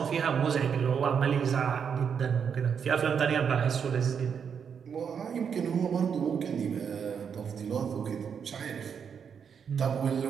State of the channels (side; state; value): left; quieter; 7.1 dB